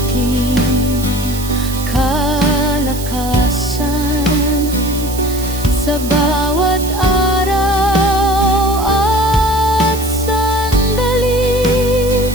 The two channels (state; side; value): noise; right; hiss, 11 dB below the sound